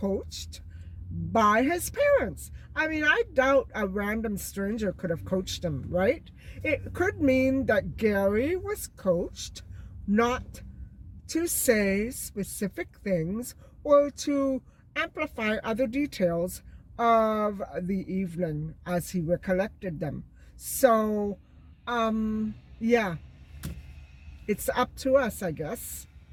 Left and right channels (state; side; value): identical; both; correlation 1.00